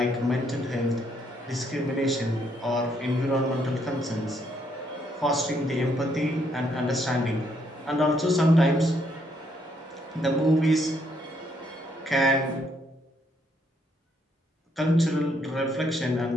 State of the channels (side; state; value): both; normal; correlation 0.72